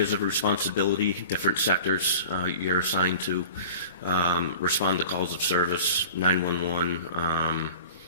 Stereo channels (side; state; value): both; inverted; correlation -0.41